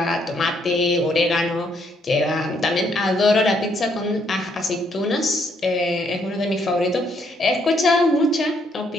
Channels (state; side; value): normal; both; correlation 0.71